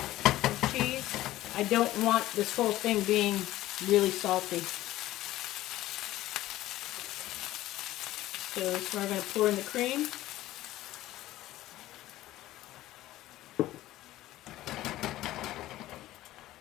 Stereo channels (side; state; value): right; quieter; 15.5 dB